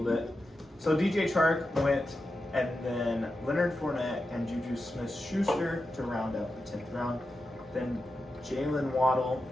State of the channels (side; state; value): both; normal; correlation 0.90